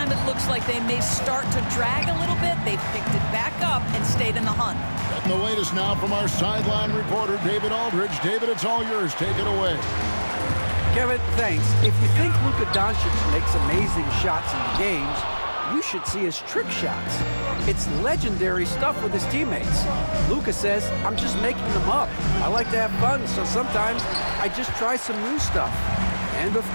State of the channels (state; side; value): inverted; both; correlation -1.00